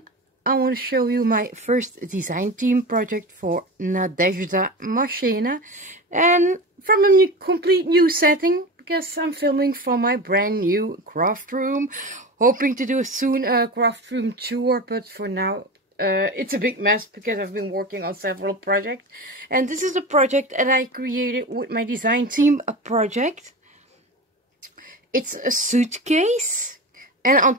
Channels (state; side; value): normal; both; correlation 0.28